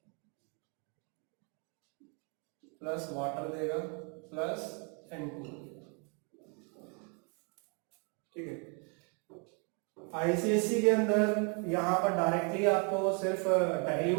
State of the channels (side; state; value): left; quieter; 36.1 dB